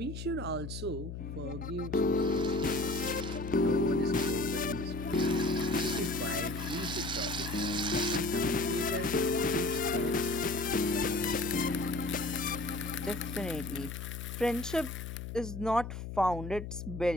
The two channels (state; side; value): noise; left; hum, 7 dB below the sound